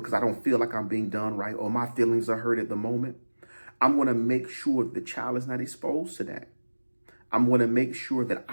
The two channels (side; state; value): both; inverted; correlation -1.00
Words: I don't feel like I'm being done right or my feelings are hurt at the moment, I'm going to make sure that the child is not exposed to that. I'm going to make sure that